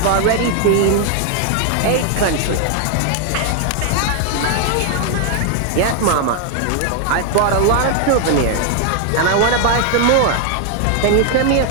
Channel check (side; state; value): both; different; correlation 0.00